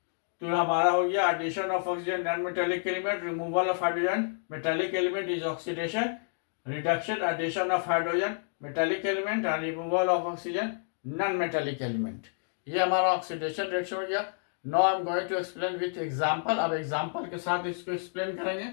तो हमारा हो गया addition of oxygen non metallic element, removal of hydrogen metallic element is oxidation. Reduction, addition of hydrogen metallic element and removal of oxygen non metallic element, ये हमारा ऑक्सीडेशन रिएक्शन हो गया। Now I am going to explain with example. अब example के साथ इसको explain करेंगे।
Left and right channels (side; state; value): right; silent; digital silence